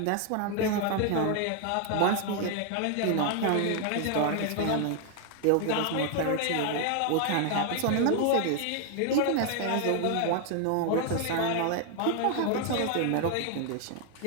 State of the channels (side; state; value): both; different; correlation 0.00